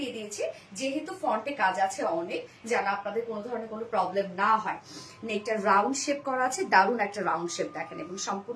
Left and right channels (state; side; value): identical; both; correlation 1.00